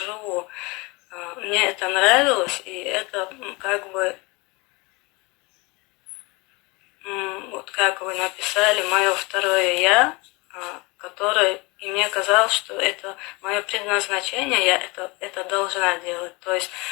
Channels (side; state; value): right; quieter; 25.8 dB